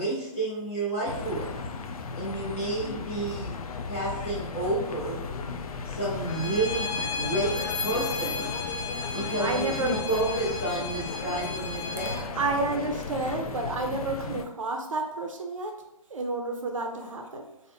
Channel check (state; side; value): normal; both; correlation -0.15